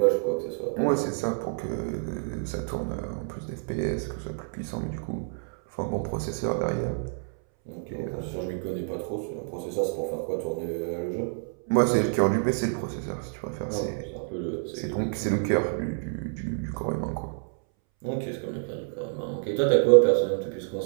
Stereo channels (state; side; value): silent; left; 59 dB below the other